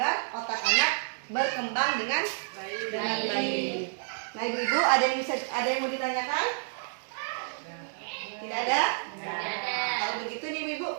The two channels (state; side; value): silent; left; 58 dB below the other